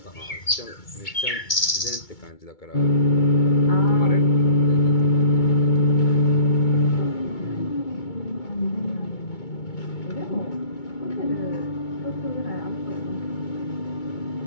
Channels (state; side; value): late; right; 2.2 ms